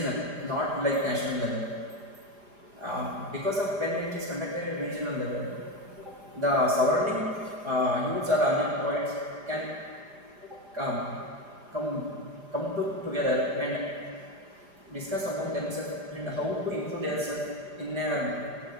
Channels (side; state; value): left; late; 5.0 ms